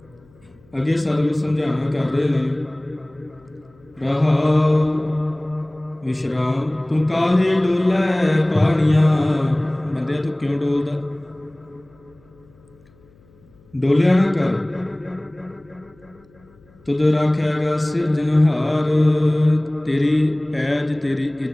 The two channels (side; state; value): left; noise; hum, 29 dB below the sound